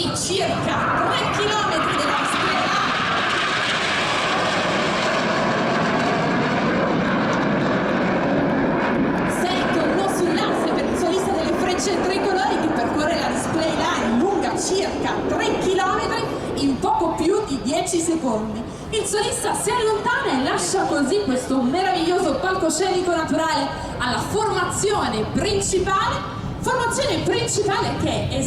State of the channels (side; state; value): both; identical; correlation 1.00